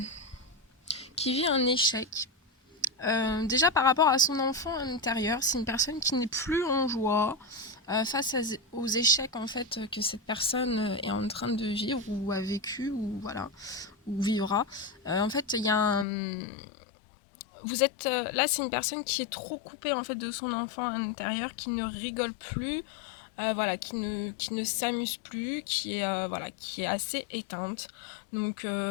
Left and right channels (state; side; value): drops out; right; at 16.1 s